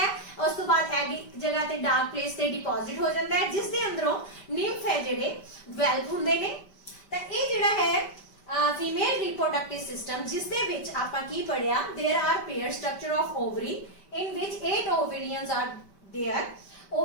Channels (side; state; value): right; late; 5.1 ms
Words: ਉਸ ਤੋਂ ਬਾਅਦ ਐਗ ਇੱਕ ਜਗ੍ਹਾ ਤੇ ਡਾਰਕ ਪਲੇਸ ਤੇ ਡਿਪੋਜ਼ਿਟ ਹੋ ਜਾਂਦਾ ਹੈ ਜਿਸ ਦੇ ਅੰਦਰੋਂ ਨਿੰਫ ਹੈ ਜਿਹੜੇ ਡਿਵੈਲਪ ਹੁੰਦੇ ਨੇ। ਤਾਂ ਇਹ ਜਿਹੜਾ ਹੈ ਫੀਮੇਲ ਰਿਪਰੋਡਕਟਿਵ ਸਿਸਟਮ ਜਿਸ ਦੇ ਵਿੱਚ ਆਪਾਂ ਕੀ ਪੜਿਆ, there are pair structure of ovary in which 8 ovaries are there।